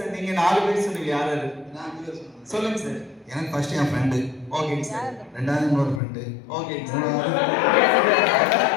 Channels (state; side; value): drops out; right; at 6.0 s